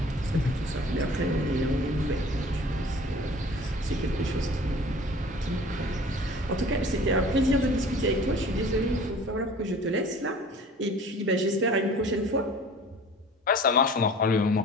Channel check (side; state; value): both; normal; correlation 0.45